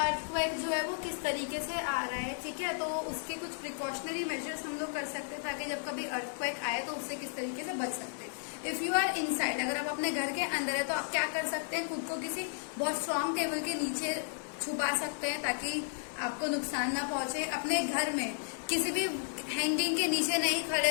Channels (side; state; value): right; silent; digital silence